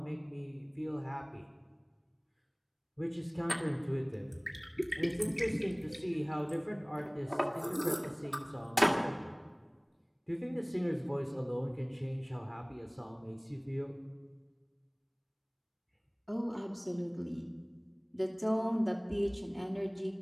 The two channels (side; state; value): both; identical; correlation 1.00